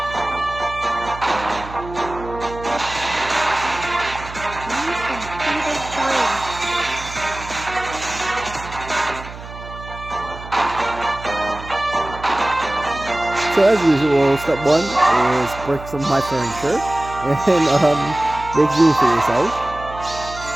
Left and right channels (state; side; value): noise; right; hum, 14 dB below the sound